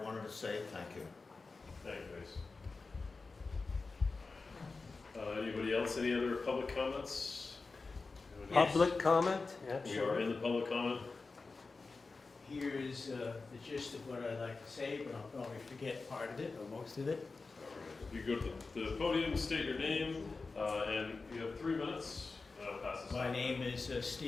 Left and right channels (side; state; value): right; quieter; 4.0 dB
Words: wanted to say. Thank you. Thank you, Ace. Anybody else? Any other public comments? Public comment? We are in the public comment. Here's the gist of what I'd like to say, but I'll probably forget part of it, or most of it. You go to the podium, state your name, and you have 3 minutes. Pass this My on. name is